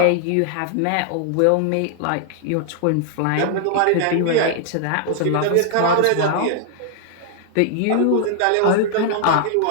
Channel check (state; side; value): different; both; correlation -0.01